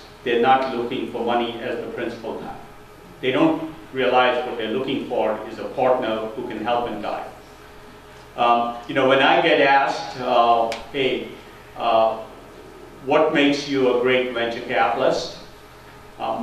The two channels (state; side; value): identical; both; correlation 1.00